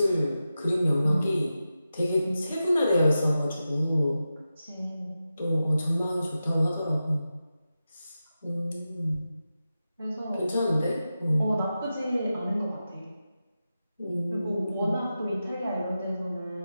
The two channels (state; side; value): inverted; both; correlation -0.92